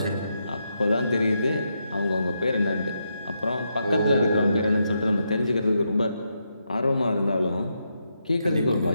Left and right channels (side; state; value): both; inverted; correlation -0.82